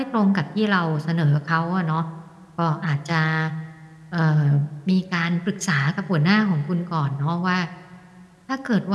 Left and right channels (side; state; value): both; identical; correlation 1.00